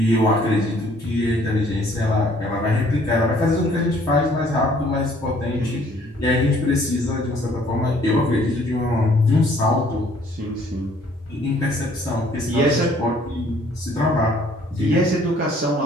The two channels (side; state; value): both; normal; correlation 0.59